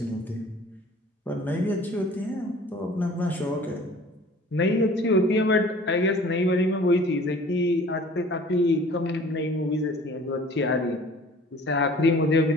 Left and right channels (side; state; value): both; normal; correlation 0.48